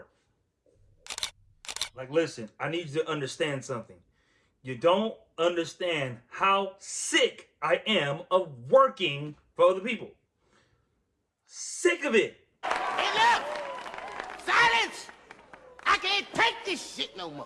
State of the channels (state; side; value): identical; both; correlation 1.00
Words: Like, listen, I need you to understand something. You don't understand how sick I am of working for other people. Sick of it. Hey, look! Silence! I can't take this shit no